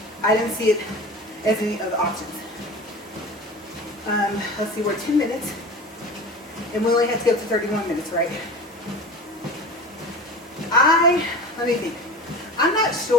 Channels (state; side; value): normal; both; correlation 0.34